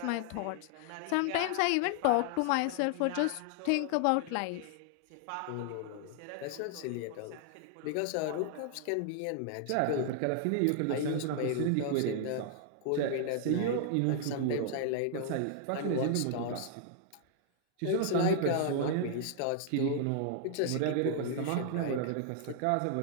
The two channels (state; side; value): different; both; correlation 0.00